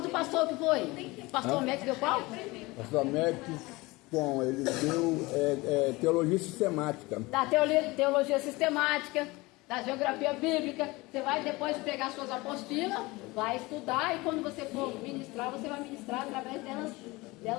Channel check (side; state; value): right; quieter; 22.3 dB